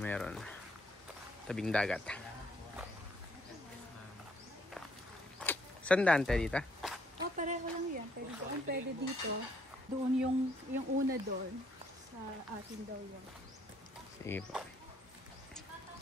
meron. Tabing dagat. Saan daan tayo dito? Pareho lang yan. Pwede doon, pwede dito. Doon yung una doon. Sa atin daw yun. Sige po.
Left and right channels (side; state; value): both; normal; correlation 0.68